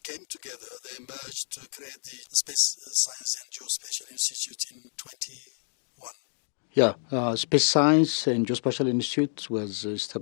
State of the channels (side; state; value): right; silent; digital silence